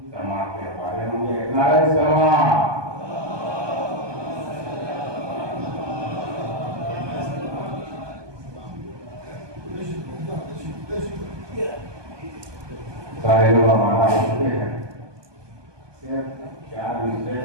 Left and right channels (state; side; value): late; left; 1.2 ms